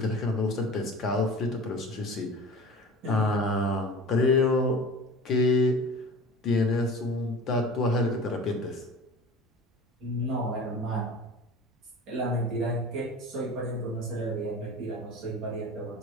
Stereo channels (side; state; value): both; normal; correlation 0.38